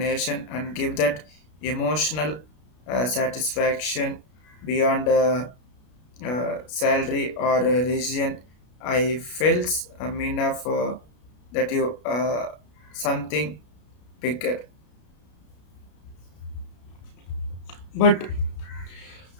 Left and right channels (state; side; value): late; right; 33 ms